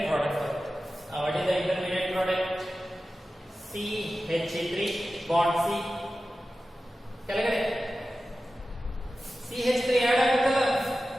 ಪ್ರಾಡಕ್ಟ್ ಬರುತ್ತೆ. What is the intermediate product? CH3 bond C ಕೆಳಗಡೆ CH3 ಆಡ್ ಆಗುತ್ತಲ್ಲ,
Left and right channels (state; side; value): normal; both; correlation 0.94